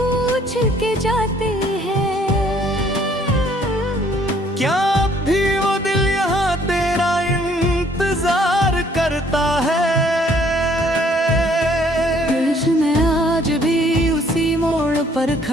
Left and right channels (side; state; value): both; normal; correlation 0.62